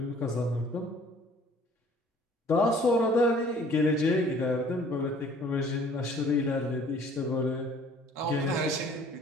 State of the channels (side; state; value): both; normal; correlation 0.54